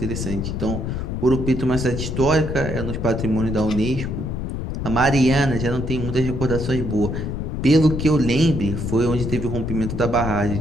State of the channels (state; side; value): noise; left; rumble, 4 dB below the sound